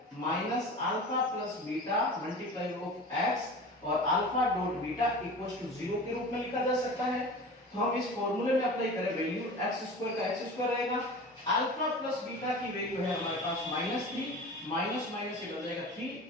alpha plus beta multiply of x और alpha dot beta equals to 0 के रूप में लिखा जा सकता है। तो हम इस फॉर्मूले में अप्लाई करें, वैल्यू x² का x² रहेगा, अल्फा प्लस बीटा की वैल्यू है हमारे पास -3 माइनस माइनस से बन जाएगा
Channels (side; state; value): both; normal; correlation 0.36